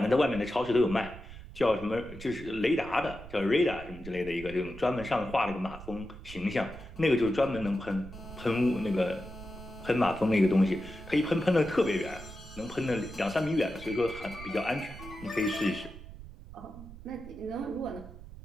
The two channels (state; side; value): noise; right; rumble, 15 dB below the sound